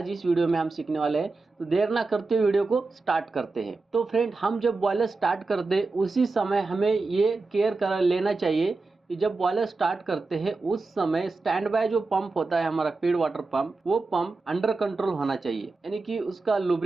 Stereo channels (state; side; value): quieter; left; 3.7 dB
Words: इस वीडियो में हम सीखने वाले हैं। तो देर ना करते हुए वीडियो को स्टार्ट करते हैं। तो फ्रेंड, हम जब बॉयलर स्टार्ट करते उसी समय हमें ये केयर कर लेना चाहिए कि जब बॉयलर स्टार्ट करते हैं उस समय स्टैंड बाय जो पंप होता है हमारा फीड वाटर पंप, वो पंप अंडर कंट्रोल होना चाहिए, यानी कि उसका